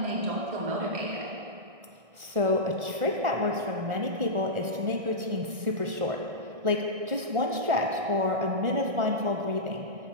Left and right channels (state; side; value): late; left; 1.4 ms